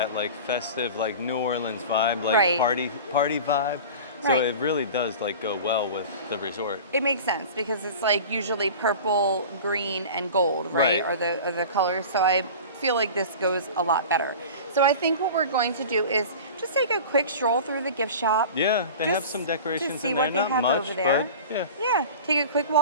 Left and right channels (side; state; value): both; inverted; correlation -0.36